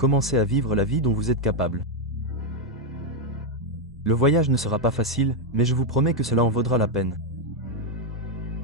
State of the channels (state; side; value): normal; both; correlation 0.02